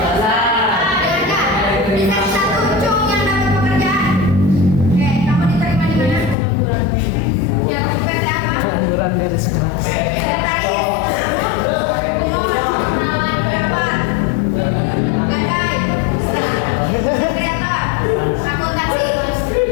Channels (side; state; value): right; drops out; at 6.4 s